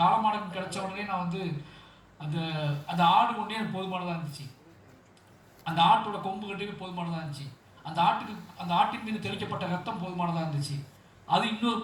காலமாடம் கிடச்ச உடனே நான் வந்து அந்த ஆடு ஒன்றே எனக்கு போதுமானதாக இருந்துச்சு. அந்த ஆட்டோட கொம்பு கட்டுக்கு போதுமானதாக இருந்துச்சு. அந்த ஆட்டின் மீது தெளிக்கப்பட்ட ரத்தம் போதுமானதாக இருந்துச்சு. அது இன்னொரு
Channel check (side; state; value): both; identical; correlation 1.00